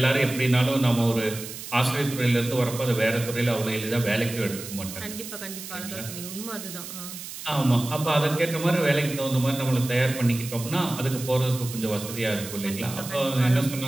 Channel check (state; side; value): noise; right; hiss, 11 dB below the sound